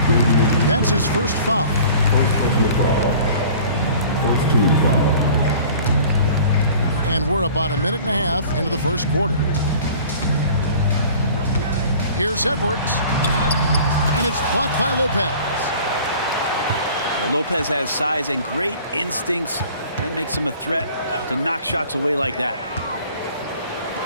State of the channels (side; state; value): both; inverted; correlation -0.47